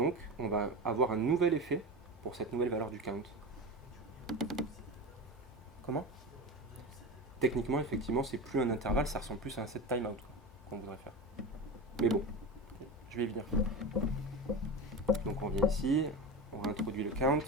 on va avoir un nouvel effet pour cette nouvelle valeur du count. Comment? Techniquement, effectivement, c'est plus un intervalle, ça ressemble plus à un set timeout qu'on voudrait faire. Mais bon, je vais y venir. Donc on vient ici, on réintroduit le count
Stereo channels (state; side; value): normal; both; correlation 0.25